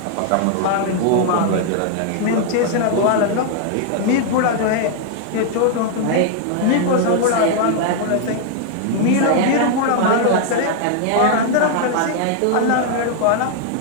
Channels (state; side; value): different; both; correlation 0.00